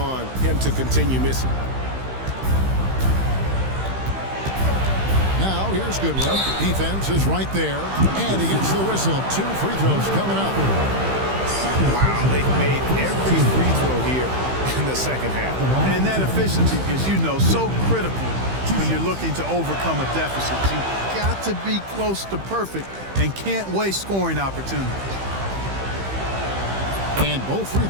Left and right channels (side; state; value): left; late; 15 ms